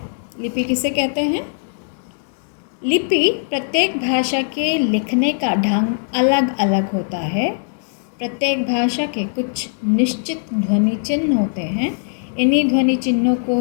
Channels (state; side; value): silent; right; digital silence